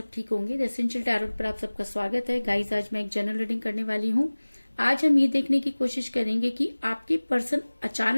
ठीक होंगे। द एसेंशियल टैरोट पर आप सबका स्वागत है। गाइस, आज मैं एक जनरल रीडिंग करने वाली हूँ। आज हम ये देखने की कोशिश करेंगे कि आपके पर्सन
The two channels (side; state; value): both; inverted; correlation -1.00